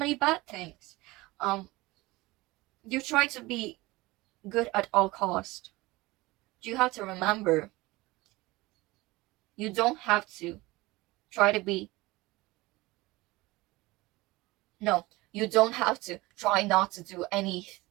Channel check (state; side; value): quieter; left; 20.9 dB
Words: bad things. You try to be good at all cost. You have to remember, you don't have to try to be you don't have to try not to do